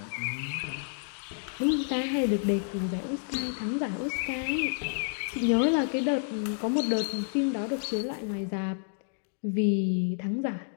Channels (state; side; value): silent; right; 57 dB below the other